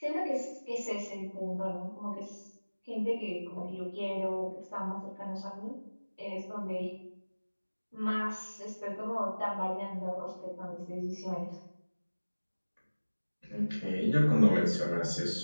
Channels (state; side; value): inverted; both; correlation -1.00